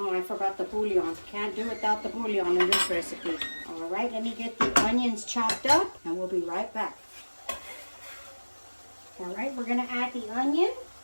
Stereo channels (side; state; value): both; inverted; correlation -1.00